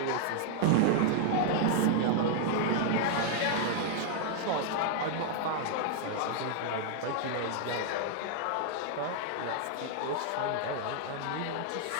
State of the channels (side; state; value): both; different; correlation 0.00